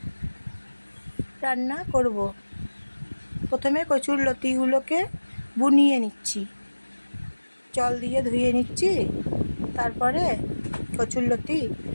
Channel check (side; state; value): both; inverted; correlation -1.00